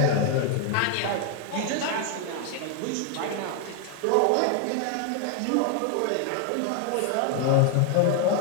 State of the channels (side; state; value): both; different; correlation 0.00